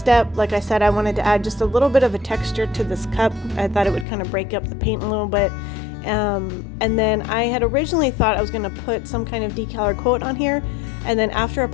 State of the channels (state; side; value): drops out; right; at 4.0 s